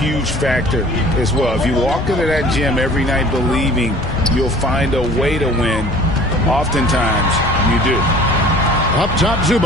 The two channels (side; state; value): left; noise; rumble, 10 dB below the sound